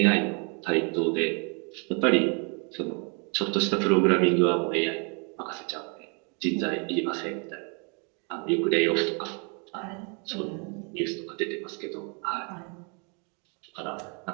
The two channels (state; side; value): quieter; left; 36.4 dB